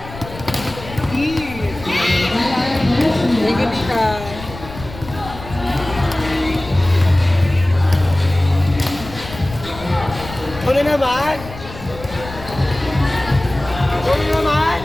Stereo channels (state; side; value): noise; left; rumble, 14 dB below the sound